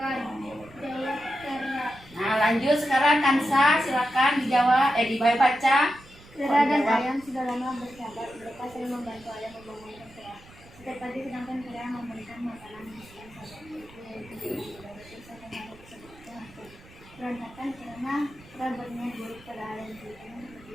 Jawab Kera. Nah, lanjut sekarang Kansa. Silakan dijawab. Dibaca. Kera dan ayam sudah lama bersahabat. Mereka sering membantu ayam membangunkan Kera. Setiap pagi sedangkan Kera memberikan makanan yang berantakan karena Kera berniat buruk pada ayam.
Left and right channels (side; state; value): right; noise; rumble, 23 dB below the sound